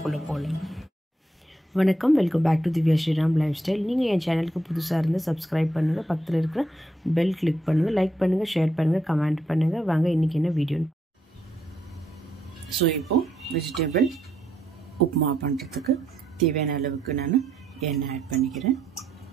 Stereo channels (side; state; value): both; normal; correlation 0.76